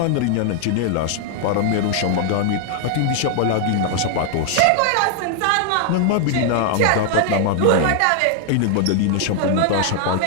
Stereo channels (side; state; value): both; different; correlation 0.00